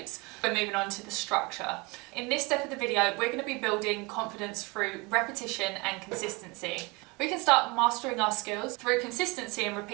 We're moving on to the structure. In this step of the video, we're going to be building confidence through repetition and consistency. We can start mastering our skills through consistency and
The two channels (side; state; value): left; quieter; 26.6 dB